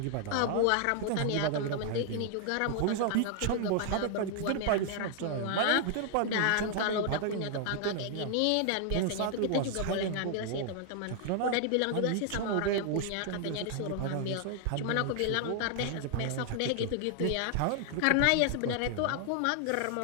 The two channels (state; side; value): different; both; correlation 0.00